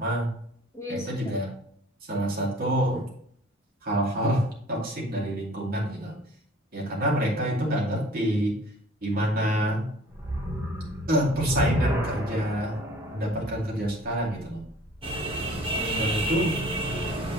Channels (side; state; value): both; normal; correlation 0.50